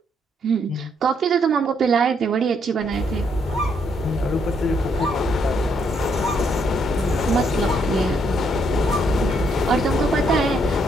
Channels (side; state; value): both; normal; correlation 0.73